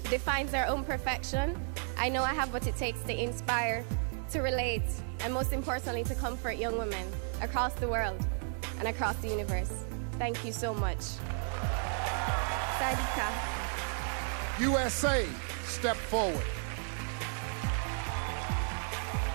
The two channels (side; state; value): left; silent; 55 dB below the other